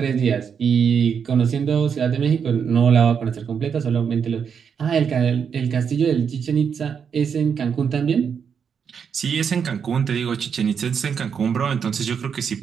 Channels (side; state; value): left; quieter; 7.0 dB